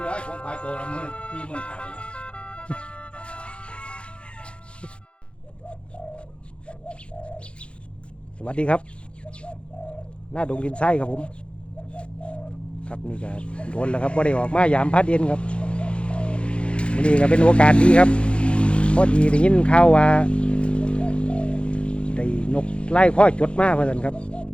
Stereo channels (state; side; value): late; right; 0.058 ms